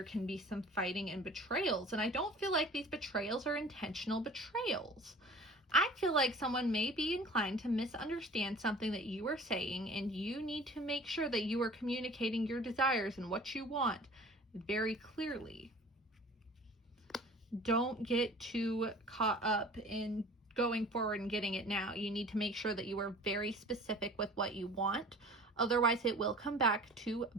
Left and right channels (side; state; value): both; normal; correlation 0.45